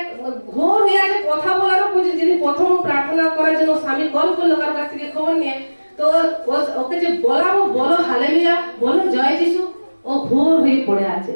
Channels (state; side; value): inverted; both; correlation -1.00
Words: ঘোর হয়ে আছে, কথা বলারও উচিত। যিনি প্রথম প্রার্থনা করার জন্য স্বামী কল করলো কারোর কাছ থেকে খবর নিয়ে, তো ওকে যে বলাবো, বলো হালেলুয়া, বলো জয় যিশু, ও ঘোর হয়ে পড়ে আছে।